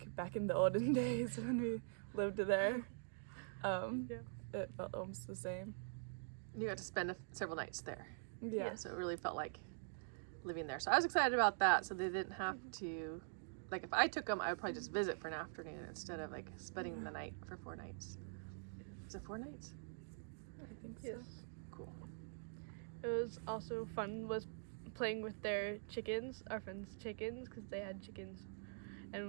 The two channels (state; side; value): silent; left; digital silence